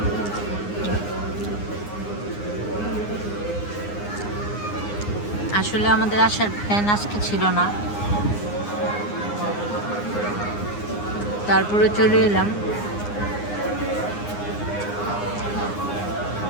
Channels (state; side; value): late; right; 9.7 ms